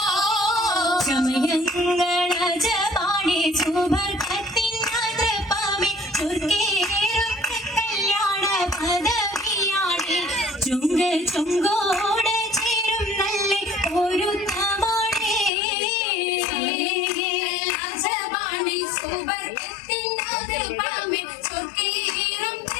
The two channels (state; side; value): drops out; right; at 15.5 s